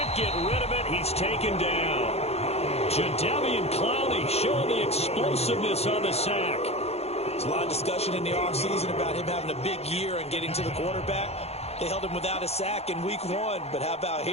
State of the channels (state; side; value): late; right; 0.30 ms